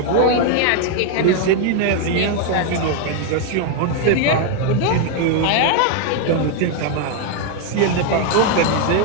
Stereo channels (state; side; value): different; both; correlation 0.00